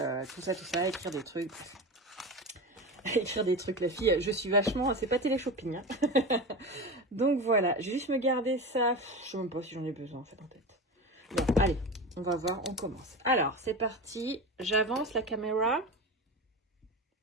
tout ça, écrire des trucs. Écrire des trucs, la fille, je suis vachement, c'est pas télé-shopping. Hein. Donc voilà, je vais juste me garder ça, je sais même pas si j'en ai besoin en fait en tête. Bon, allez, on va voir, on commence. Alors, c'est parti, j'avance la caméra.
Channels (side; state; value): both; normal; correlation 0.25